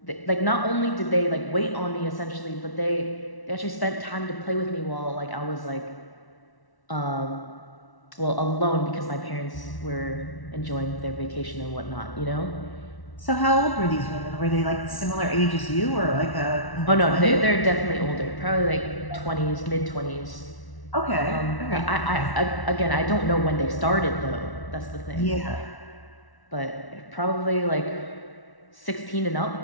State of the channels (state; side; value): late; right; 1.1 ms